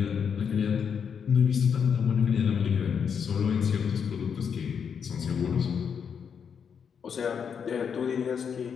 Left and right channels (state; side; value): quieter; right; 7.0 dB